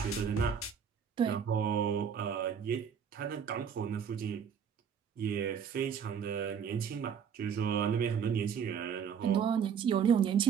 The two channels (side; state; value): left; quieter; 7.3 dB